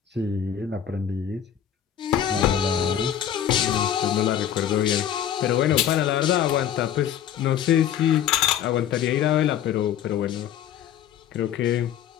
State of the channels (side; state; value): right; quieter; 9.9 dB